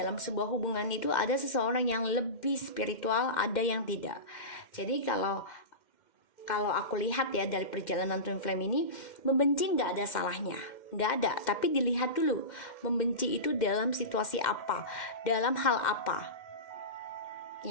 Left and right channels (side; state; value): right; late; 2.1 ms